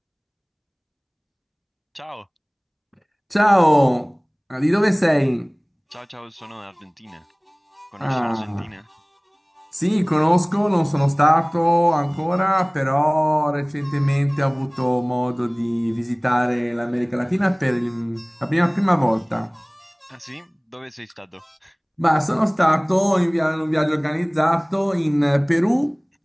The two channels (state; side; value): identical; both; correlation 1.00